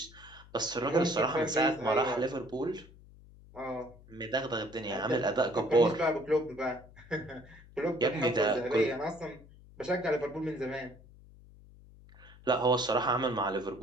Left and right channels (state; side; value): noise; left; hum, 22 dB below the sound